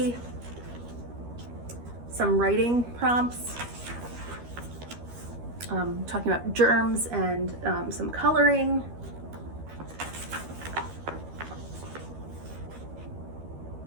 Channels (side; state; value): left; late; 13 ms